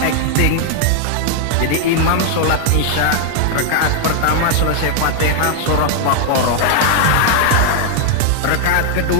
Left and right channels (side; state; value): both; different; correlation 0.00